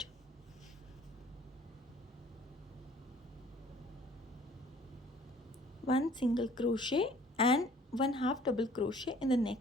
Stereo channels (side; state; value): both; normal; correlation 0.54